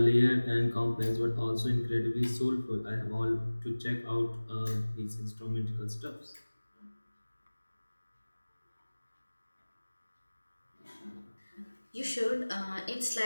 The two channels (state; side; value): inverted; both; correlation -1.00